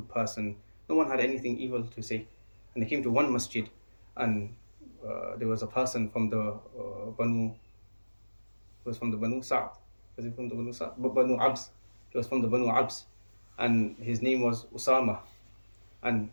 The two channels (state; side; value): inverted; both; correlation -1.00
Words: person. No one had anything evil to say. And they came to one masjid, and there was a person from the Banu Sa'd. Was it from the Banu Sa'd? Banu Abs. He was from the Banu Abs. And his name was Usama. And